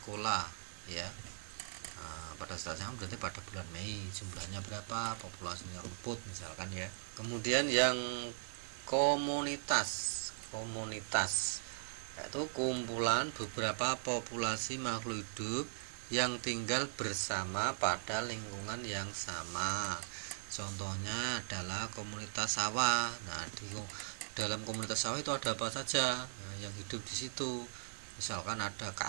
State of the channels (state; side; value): silent; left; digital silence